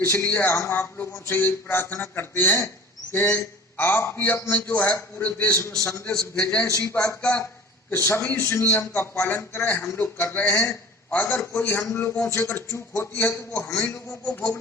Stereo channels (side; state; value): both; normal; correlation 0.41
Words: हम आप लोगों से यही प्रार्थना करते हैं कि आप भी अपने जो है पूरे देश में संदेश भेजें इसी बात का कि सभी इस नियम का पालन करें। हम लोग कर रहे हैं। अगर कोई हम लोगों से अगर चूक होती है तो वो हम ही लोगों को